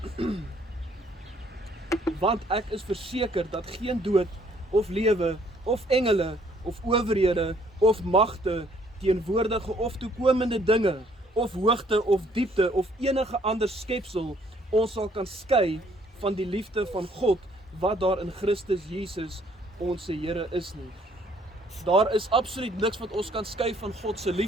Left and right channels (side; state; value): both; normal; correlation 0.63